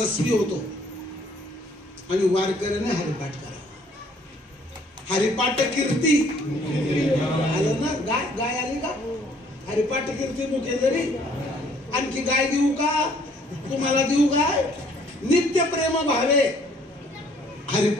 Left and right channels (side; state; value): both; normal; correlation 0.61